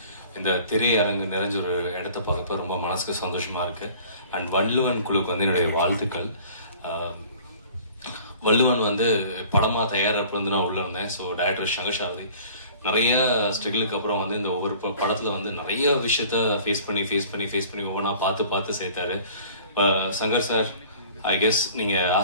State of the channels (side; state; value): both; inverted; correlation -0.49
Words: இந்த திரையரங்கு நிறைஞ்ச ஒரு இடத்த பார்க்கப்ப ரொம்ப மனசுக்கு சந்தோஷமா இருக்கு. அண்ட் வள்ளுவன் குழுக்கு வந்து என்னுடைய வாழ்த்துக்கள். வள்ளுவன் வந்து படமா தயாரிப்பு வந்து நான் உள்ள இருந்தேன். ஸோ டைரக்டர் சங்கர் சாரதி நிறைய ஸ்ட்ரகிளுக்கு அப்புறம் வந்து இந்த ஒவ்வொரு படத்துல வந்து நிறைய விஷயத்த ஃபேஸ் பண்ணி ஒவ்வொன்றா பார்த்து சேர்த்தாரு. சங்கர் சார், ஐ கெஸ் நீங்க